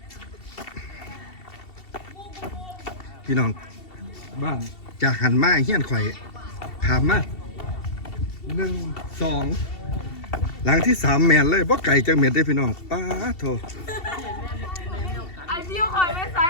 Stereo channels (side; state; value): right; late; 2.7 ms